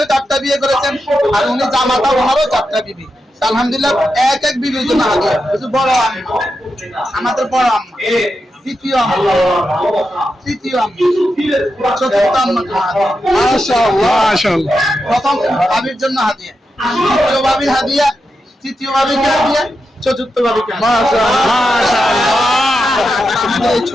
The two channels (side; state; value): both; normal; correlation 0.88